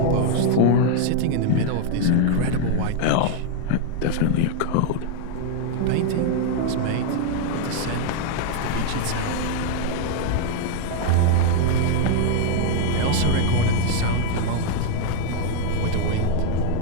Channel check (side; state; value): both; different; correlation 0.00